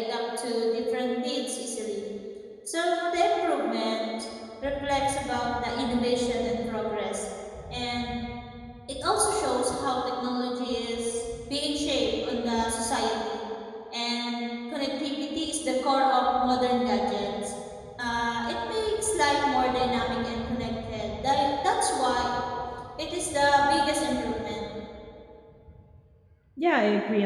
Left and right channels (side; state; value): both; identical; correlation 1.00